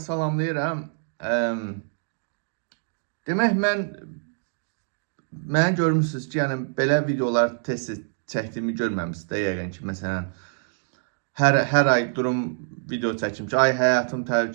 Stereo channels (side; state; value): left; silent; digital silence